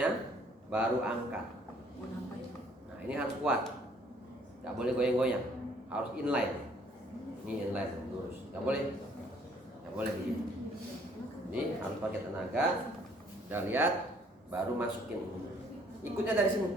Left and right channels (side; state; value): both; normal; correlation 0.61